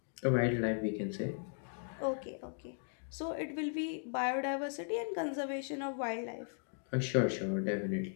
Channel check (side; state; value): right; silent; 53 dB below the other